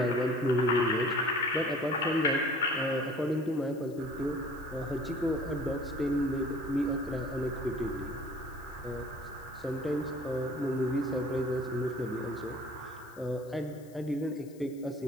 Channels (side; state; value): left; noise; hiss, 26 dB below the sound